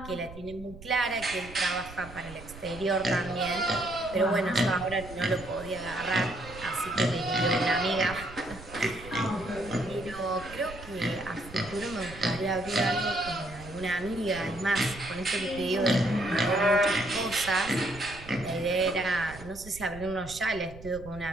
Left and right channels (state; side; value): noise; right; rumble, 16 dB below the sound